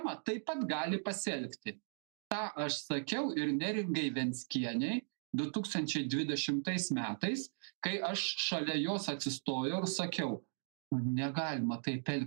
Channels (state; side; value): silent; left; digital silence